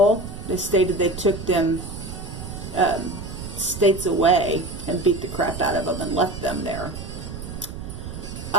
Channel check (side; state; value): right; noise; rumble, 9 dB below the sound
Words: They stated they took them states away and beat the crap out of them and left them there.